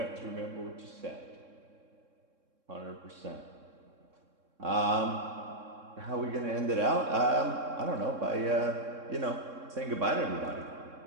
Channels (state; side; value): late; left; 3.6 ms